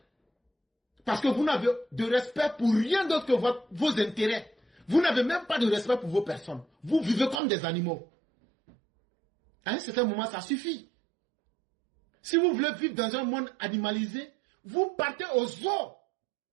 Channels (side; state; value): left; drops out; at 7.4 s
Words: Parce que vous n'avez de respect pour rien d'autre que vos intérêts. Vous n'avez même pas de respect pour vos personnes. Vous vivez comme des animaux. À un certain moment, ça suffit. Si vous voulez vivre dans un monde animalisé, vous partez au zoo